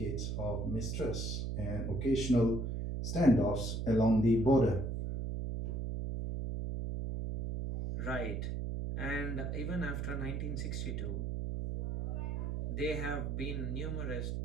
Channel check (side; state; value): right; noise; hum, 2 dB below the sound